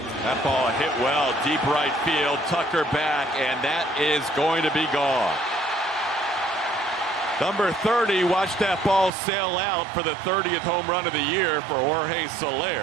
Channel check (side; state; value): left; drops out; at 9.1 s